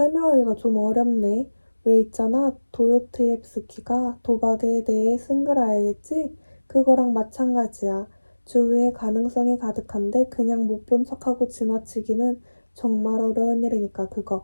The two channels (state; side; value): inverted; both; correlation -1.00